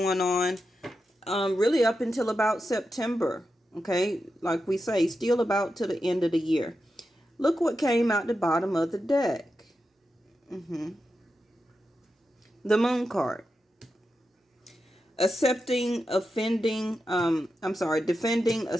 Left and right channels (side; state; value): both; normal; correlation 0.89